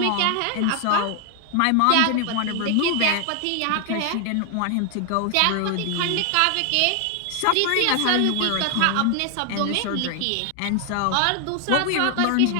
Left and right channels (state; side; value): different; both; correlation 0.00